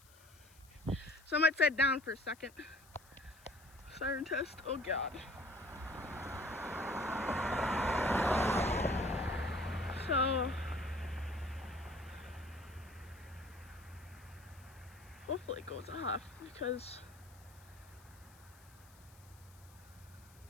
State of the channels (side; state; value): left; noise; hiss, 25 dB below the sound